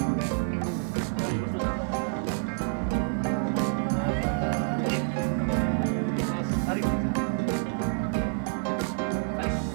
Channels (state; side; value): silent; left; 59 dB below the other